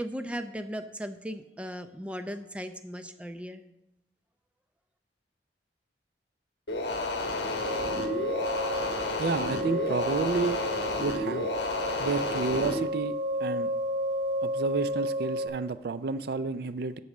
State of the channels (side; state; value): both; normal; correlation 0.12